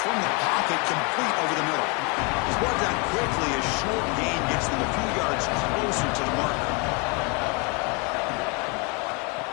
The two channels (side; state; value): right; quieter; 30.6 dB